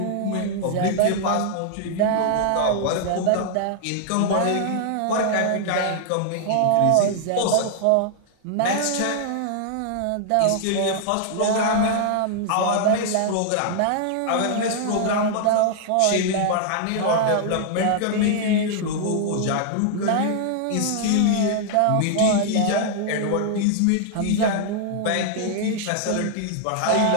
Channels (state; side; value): different; both; correlation -0.01